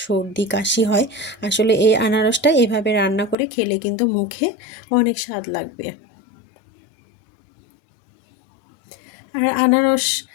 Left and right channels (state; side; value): drops out; right; at 3.4 s